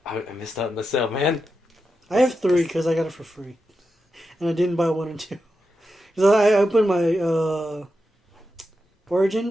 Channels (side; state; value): both; normal; correlation 0.88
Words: I missed out on the sale, man. I have 3 because I got it for free. And I didn't buy 1 and 2. Because I opened my